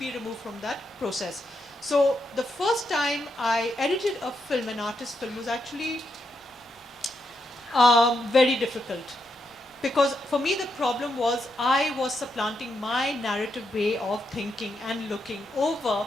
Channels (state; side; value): normal; both; correlation 0.82